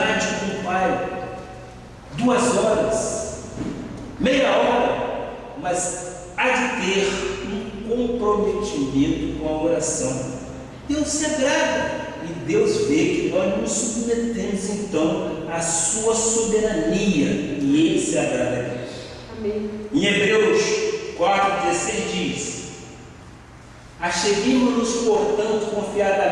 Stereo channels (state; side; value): identical; both; correlation 1.00